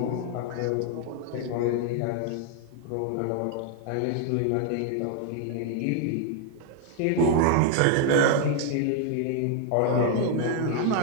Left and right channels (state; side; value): different; both; correlation 0.00